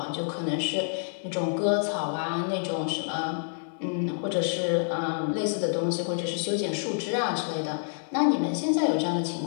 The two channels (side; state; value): right; silent; 56 dB below the other